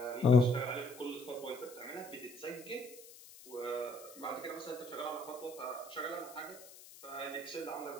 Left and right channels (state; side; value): noise; left; hiss, 18 dB below the sound